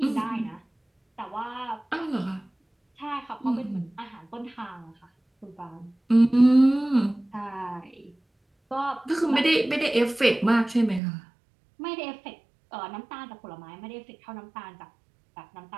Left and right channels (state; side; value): drops out; left; at 11.0 s